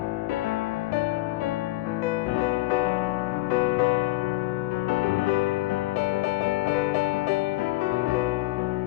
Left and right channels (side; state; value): right; quieter; 18.7 dB